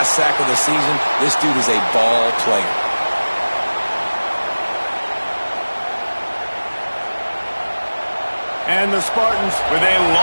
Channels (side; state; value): both; inverted; correlation -1.00